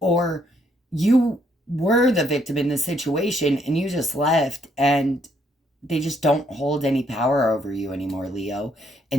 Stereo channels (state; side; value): normal; both; correlation 0.71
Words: you were the victim in the situation and you just left, and they just don't hold any power over you anymore, Leo,